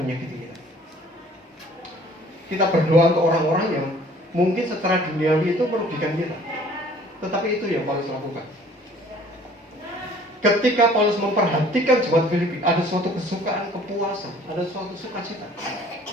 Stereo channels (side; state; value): both; normal; correlation 0.53